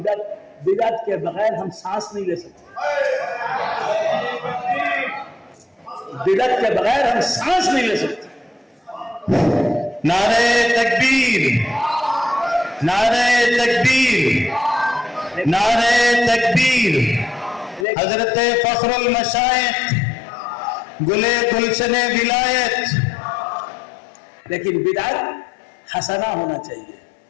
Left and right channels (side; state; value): right; drops out; at 17.9 s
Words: کے بغیر ہم سانس نہیں لے سکتے، بدعت کے بغیر ہم سانس نہیں لے سکتے۔ نعرہ تکبیر، نعرہ تکبیر، نعرہ تکبیر۔ حضرت فخر المشائخ گلے گلشن ولایت۔ لیکن بدعت حسنہ ہونا چاہیے،